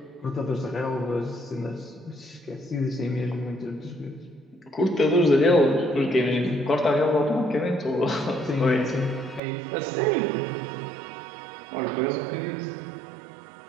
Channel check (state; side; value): drops out; left; at 9.4 s